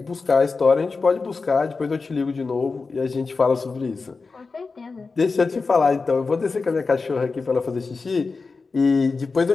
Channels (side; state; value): right; quieter; 4.3 dB